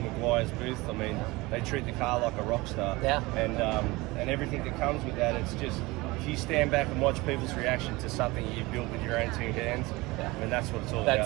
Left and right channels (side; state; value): left; quieter; 22.1 dB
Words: booth, I mean, they treat the car like a rock star. Yeah. And everything that comes with that, it's just, if you stand back and watch people's reaction to something you built with your own two hands, I mean, that's what it's all